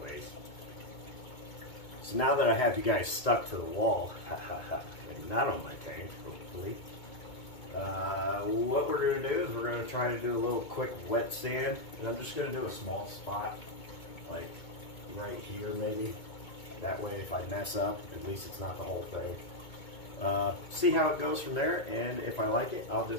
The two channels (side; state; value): right; late; 2.2 ms